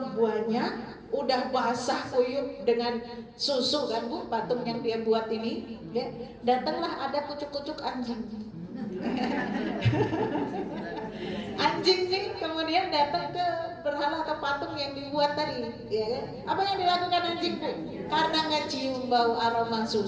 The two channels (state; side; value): identical; both; correlation 1.00